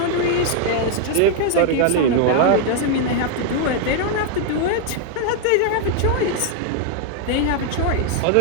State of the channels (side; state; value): both; different; correlation 0.00